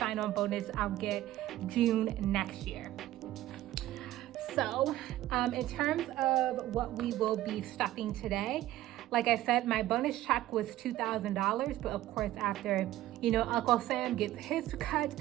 bonus I'll get June next year. So in terms of what we will be stuffing today, like I said, my bonus check was $2,000, but of course after, Uncle Sam gets his cut,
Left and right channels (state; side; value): quieter; left; 14.6 dB